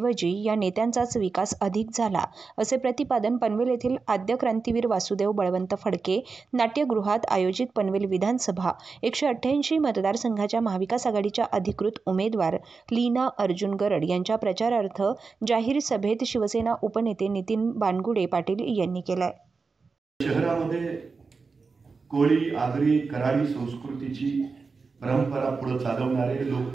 या नेत्यांचाच विकास अधिक झाला, असे प्रतिपादन पनवेल येथील आद्य क्रांतीवीर वासुदेव बळवंत फडके नाट्यगृहात आयोजित पनवेल विधानसभा 188 मतदारसंघाच्या महाविकास आघाडीच्या अधिकृत उमेदवार लीना अर्जुन गरड यांच्या प्रचारार्थ जाहीर सभेत शिवसेना उपनेते नितीन बानगुडे पाटील यांनी केलाय। शहरामध्ये कोळी, आगरी, कराडी संस्कृतीची परंपरा पुढे चालवणारे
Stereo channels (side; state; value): left; quieter; 4.6 dB